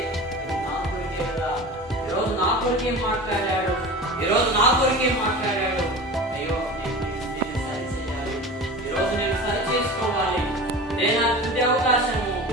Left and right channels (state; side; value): normal; both; correlation 0.34